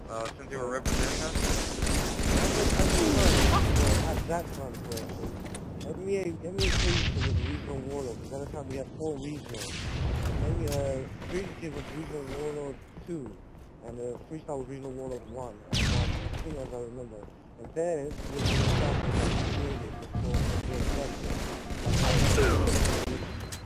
since they were representing us? At that time, MEA Crazy Kid was a regional warlord, because at the time we had 4 regionals. Crazy Kid was regional warlord 2. And the Freestyle was regional warlord 1, I think as I remember. And then, we were created before the election.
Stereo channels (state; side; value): identical; both; correlation 1.00